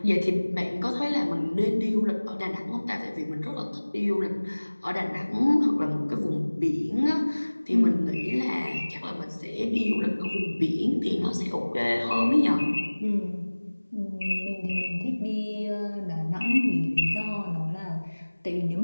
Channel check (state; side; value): inverted; both; correlation -1.00